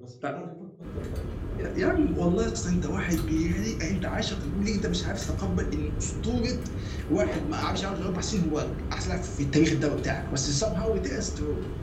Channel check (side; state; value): both; identical; correlation 1.00